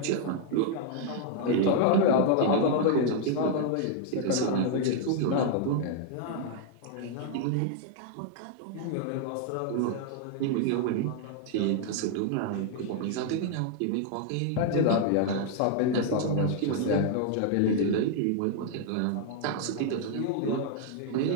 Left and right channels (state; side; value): different; both; correlation 0.00